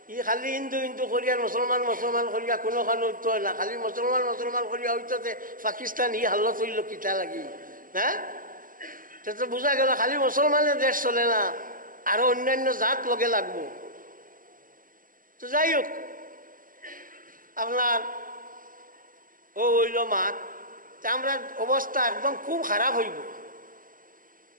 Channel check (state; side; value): late; left; 0.40 ms